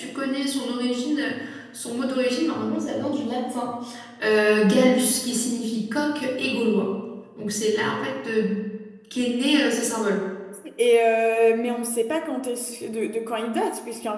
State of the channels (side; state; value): both; identical; correlation 1.00